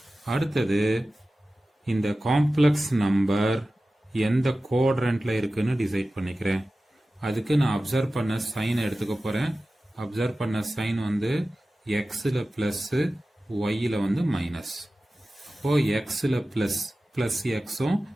அடுத்தது இந்த காம்ப்ளெக்ஸ் நம்பர் எந்த குவாட்ரண்ட்ல இருக்குன்னு டிசைட் பண்ணிக்கிறேன். அதுக்கு நான் அப்சர்வ் பண்ண சைன் எடுத்துக்க போறேன். அப்சர்வ் பண்ண சைன் வந்து எக்ஸ்ல பிளஸ், ஒய்ல வந்து மைனஸ். இப்போ எக்ஸ்ல பிளஸ் பிளஸ் எக்ஸும்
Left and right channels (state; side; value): normal; both; correlation 0.95